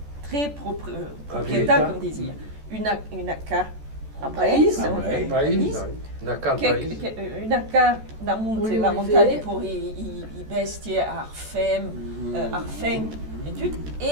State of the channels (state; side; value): late; left; 14 ms